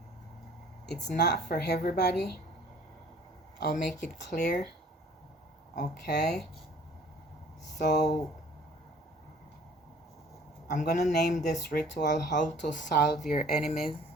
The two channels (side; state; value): both; normal; correlation 0.53